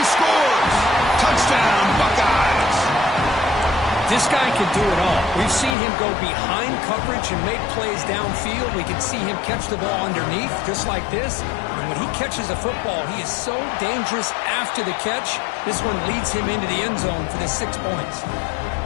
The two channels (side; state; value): right; drops out; at 5.8 s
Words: scores. Touchdown, Buckeyes. This guy can do it all. We've seen him go behind coverage and make plays downfield. We can see him catch the ball underneath just like this. And when he catches a football, he is so dangerous after the catch. This one leads him into the end zone for the 6 points.